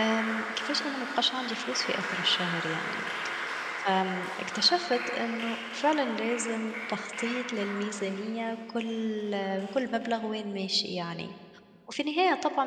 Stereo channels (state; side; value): identical; both; correlation 1.00